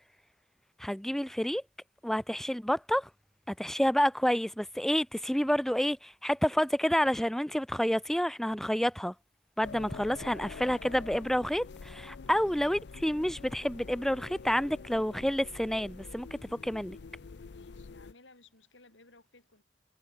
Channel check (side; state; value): both; normal; correlation 0.98